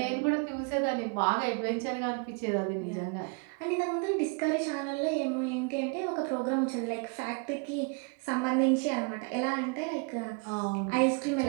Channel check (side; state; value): left; quieter; 34.3 dB